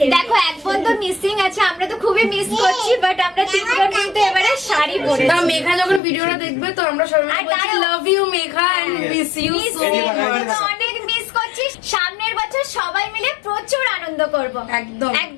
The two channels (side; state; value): right; drops out; at 6.0 s